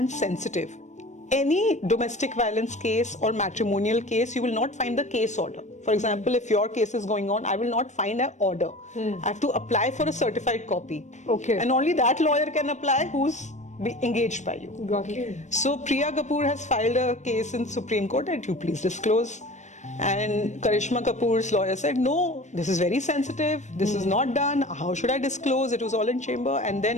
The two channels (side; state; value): right; late; 0.34 ms